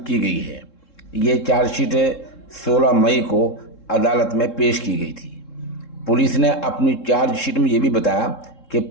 गई है। ये चार्जशीट 16 मई को अदालत में पेश की गई थी। पुलिस ने अपनी चार्जशीट में ये भी बताया कि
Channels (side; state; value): right; late; 3.7 ms